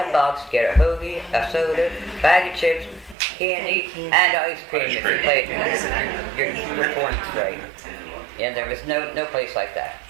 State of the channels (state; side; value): drops out; left; at 3.2 s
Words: get a hoagie, a soda, bag of chips, candy, and ice cream if you played your points right. Yeah, there was no place like that.